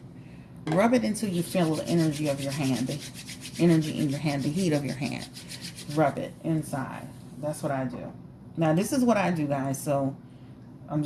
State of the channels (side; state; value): both; identical; correlation 1.00